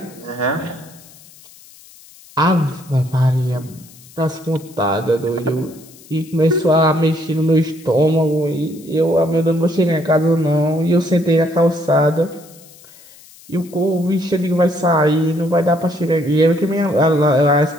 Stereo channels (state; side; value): noise; left; hiss, 23 dB below the sound